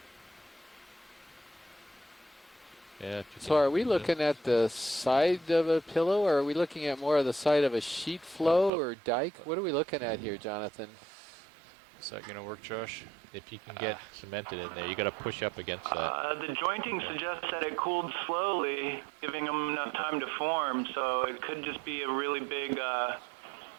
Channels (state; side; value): drops out; left; at 8.7 s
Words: Yeah. So are we looking at the side of a pillow, or are we looking at more of the side of a sheet flow or dike? What are we looking at here, Jonathan? Is that gonna work, Josh? If you can get cemented in there, you got to push up against that. The jointing suggests that it cooled slowly, giving them enough time to form. So it could just be a really big pillow